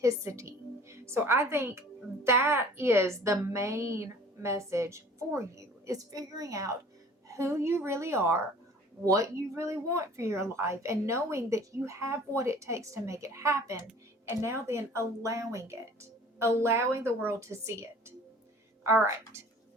So I think that is the main message for you, is figuring out who you really are, what you really want for your life, and knowing that you have what it takes to make it happen. And now then allowing it, allowing the world to see it. All right.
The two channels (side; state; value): both; normal; correlation 0.48